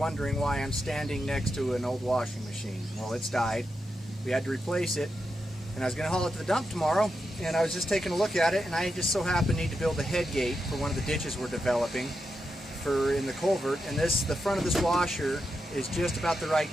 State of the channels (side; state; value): both; normal; correlation 0.86